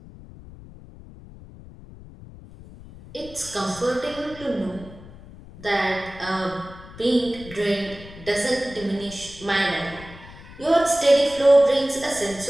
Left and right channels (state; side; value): noise; left; rumble, 18 dB below the sound